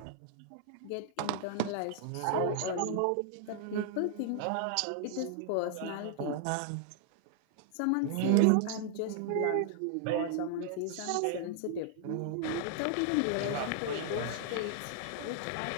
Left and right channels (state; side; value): different; both; correlation 0.00